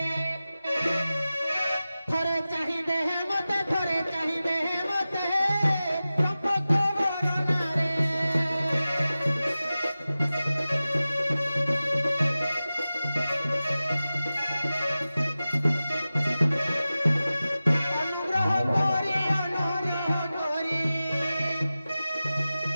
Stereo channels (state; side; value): inverted; both; correlation -0.95